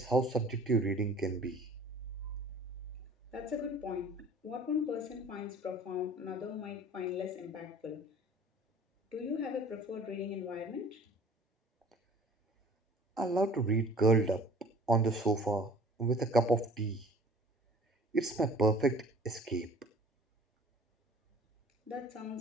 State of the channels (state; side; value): normal; both; correlation 0.48